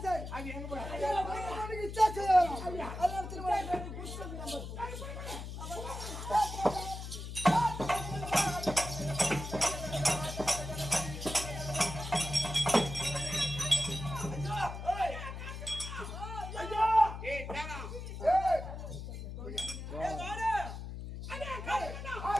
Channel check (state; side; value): noise; left; hum, 8 dB below the sound